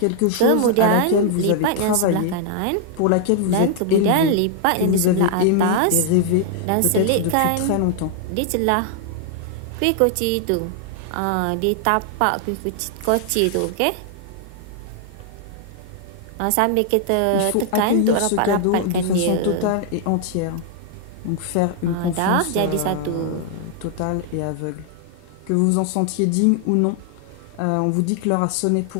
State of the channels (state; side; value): different; both; correlation 0.00